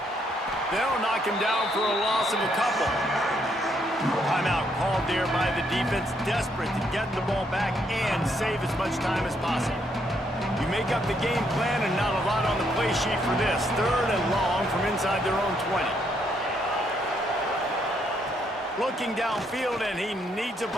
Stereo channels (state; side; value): normal; both; correlation 0.73